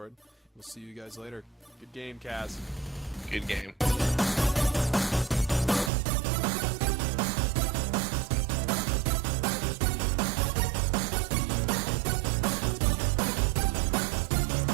We'll see you guys later. Good game, Kaz. Good game.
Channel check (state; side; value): drops out; left; at 5.9 s